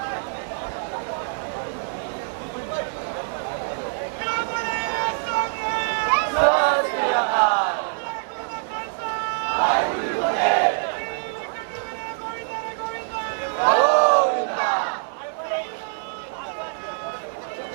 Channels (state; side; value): silent; left; 62 dB below the other